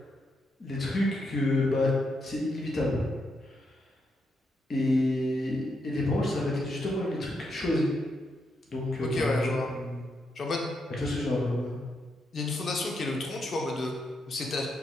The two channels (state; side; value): normal; both; correlation 0.81